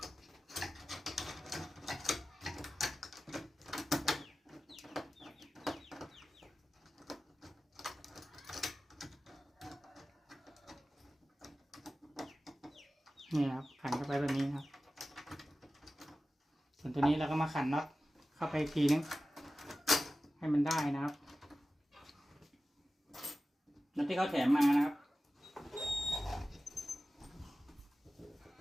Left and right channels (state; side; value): normal; both; correlation 0.95